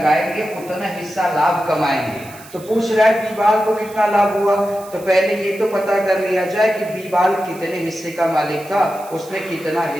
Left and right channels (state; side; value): noise; right; hiss, 20 dB below the sound